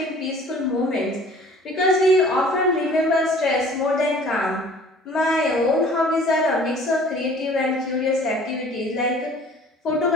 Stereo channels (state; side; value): normal; both; correlation 0.50